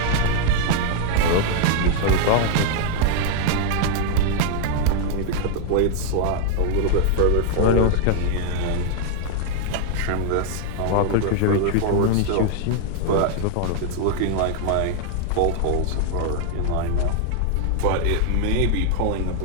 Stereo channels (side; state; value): both; different; correlation 0.00